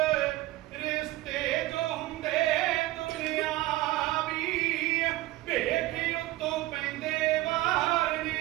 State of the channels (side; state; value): left; quieter; 17.5 dB